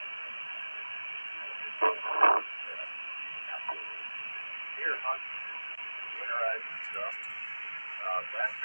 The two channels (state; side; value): inverted; both; correlation -1.00